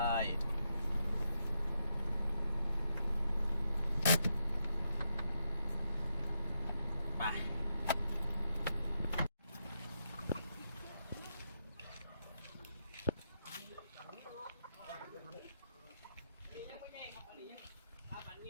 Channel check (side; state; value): both; inverted; correlation -0.81